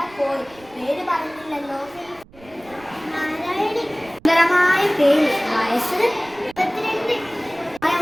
പോയി. പേര് പറഞ്ഞില്ലല്ലോ. സുന്ദരമായ പേര്. വയസ്സ് 22.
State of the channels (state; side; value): noise; right; rumble, 25 dB below the sound